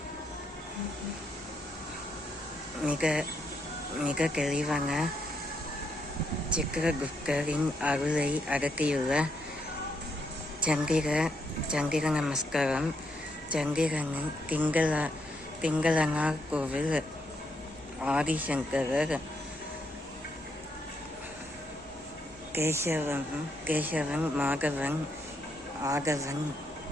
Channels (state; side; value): normal; both; correlation 0.77